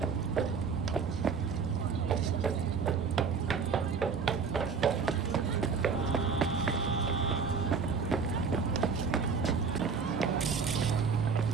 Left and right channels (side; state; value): left; quieter; 5.5 dB